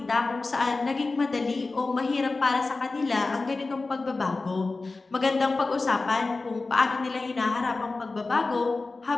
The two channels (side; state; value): right; quieter; 3.6 dB